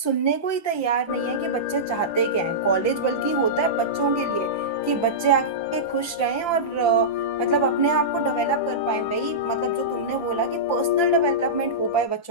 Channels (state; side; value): late; right; 5.8 ms